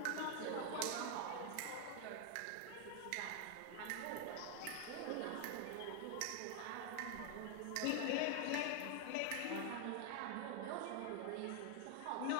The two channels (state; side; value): different; both; correlation 0.00